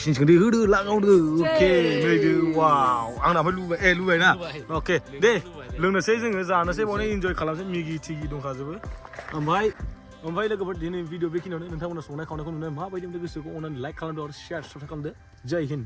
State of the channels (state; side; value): identical; both; correlation 1.00